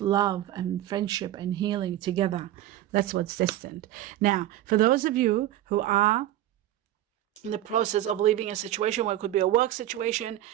love and friendship and healing together. That's what's destined. Now, for those of you who are in the process of leaving a situation, where it could be a work situation,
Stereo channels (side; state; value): left; quieter; 13.6 dB